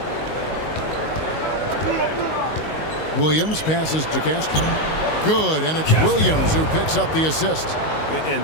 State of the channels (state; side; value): late; right; 19 ms